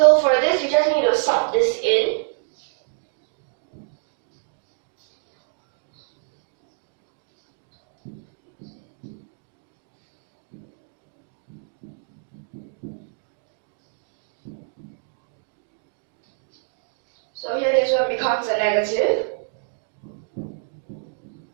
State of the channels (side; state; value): left; silent; digital silence